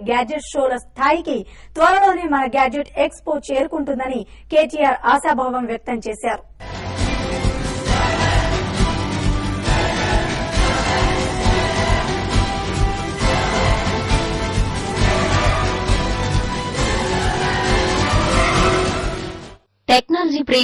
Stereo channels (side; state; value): both; identical; correlation 1.00